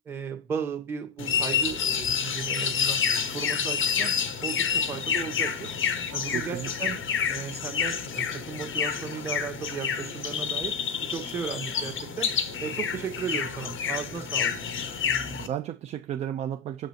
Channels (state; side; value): quieter; right; 3.7 dB